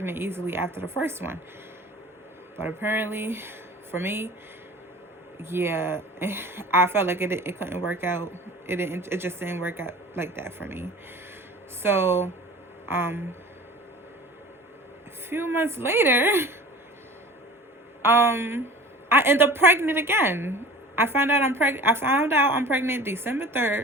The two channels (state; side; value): normal; both; correlation 0.40